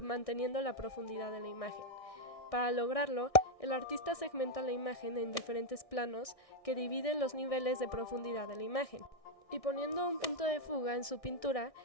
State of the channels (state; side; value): late; right; 1.6 ms